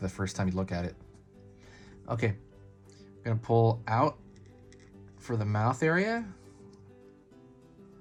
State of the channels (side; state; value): both; identical; correlation 1.00